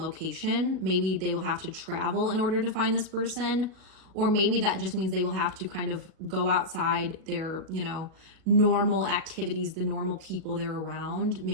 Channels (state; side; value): late; left; 38 ms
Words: Maybe they will have to travel in order to find this person, or maybe that just means they will have to kind of go outside their, you know, normal activities, the normal people they're around,